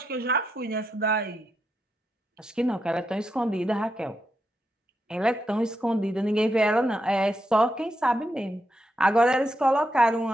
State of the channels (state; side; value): normal; both; correlation 0.83